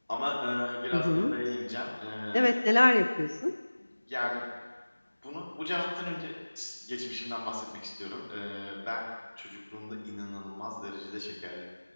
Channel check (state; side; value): inverted; both; correlation -1.00